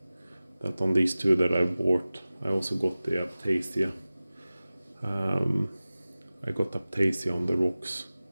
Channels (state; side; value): inverted; both; correlation -0.97